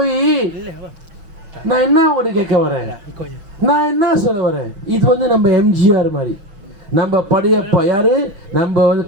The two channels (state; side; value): late; left; 6.0 ms